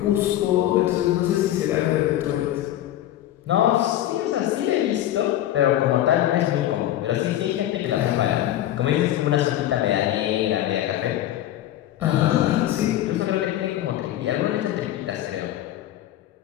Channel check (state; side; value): quieter; right; 13.1 dB